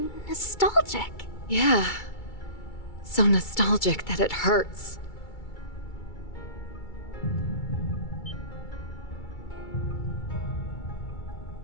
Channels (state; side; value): late; right; 2.3 ms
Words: nostalgic. Yeah. So nostalgic that it hurts.